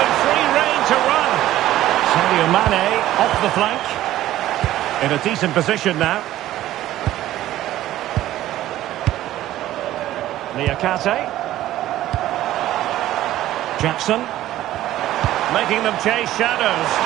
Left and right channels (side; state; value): left; quieter; 14.1 dB